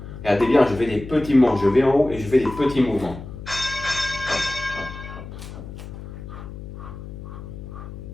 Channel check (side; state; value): left; noise; hum, 12 dB below the sound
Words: Regardez bien, je fais des petits mouvements. Je vais en haut et je fais des petits mouvements.